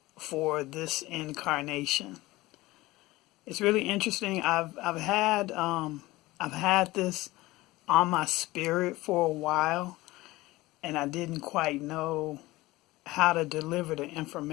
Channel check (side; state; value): right; quieter; 19.3 dB